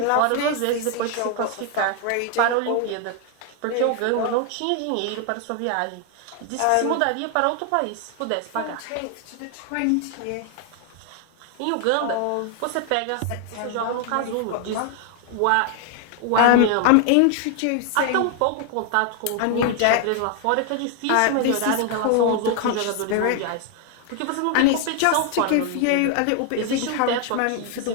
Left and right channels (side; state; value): both; different; correlation 0.00